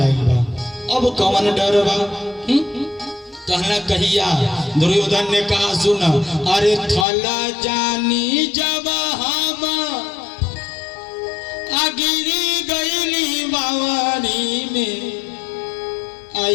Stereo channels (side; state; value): right; drops out; at 7.1 s